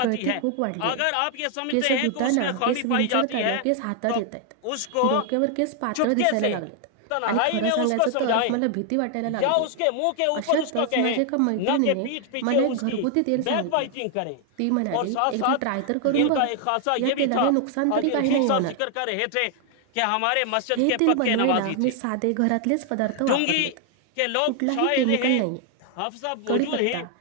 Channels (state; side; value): different; both; correlation 0.00